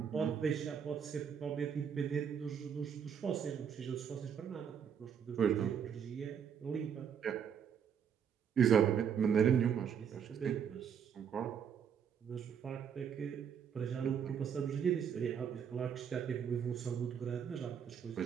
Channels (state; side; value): quieter; left; 7.7 dB